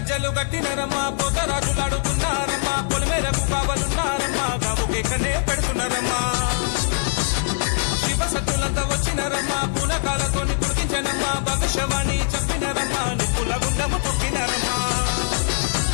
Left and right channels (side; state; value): right; silent; digital silence